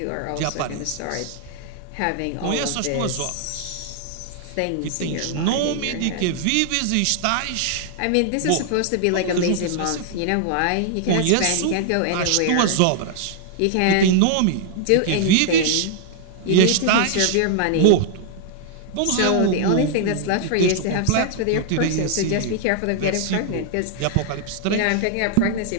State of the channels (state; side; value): different; both; correlation 0.00